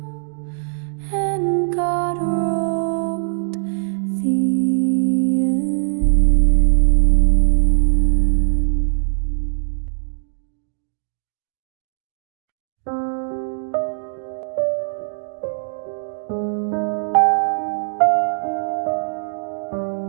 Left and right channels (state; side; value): silent; left; digital silence